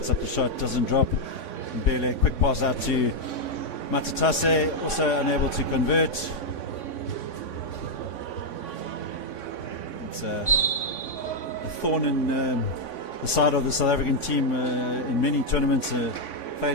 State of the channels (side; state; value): right; late; 3.5 ms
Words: up the shot, doesn't drop. Mbele, quick pass out to Matatase, also unable to convert. It's a thorn in the side of the South African team in many tournaments.